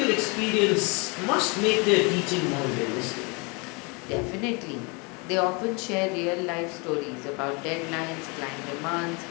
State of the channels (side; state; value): right; quieter; 30.4 dB